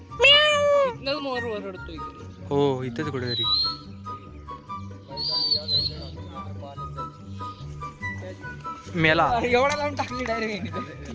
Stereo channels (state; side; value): identical; both; correlation 1.00